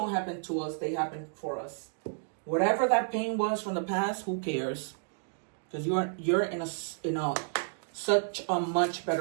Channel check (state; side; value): silent; left; digital silence